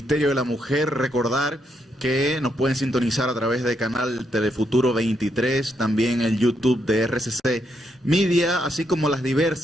de la Mujer. Recordar que nos pueden sintonizar a través del canal Telefuturo 23, también el YouTube de RCC Media, así como las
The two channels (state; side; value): normal; both; correlation 0.78